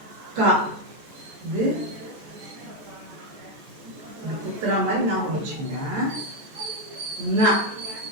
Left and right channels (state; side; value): late; left; 14 ms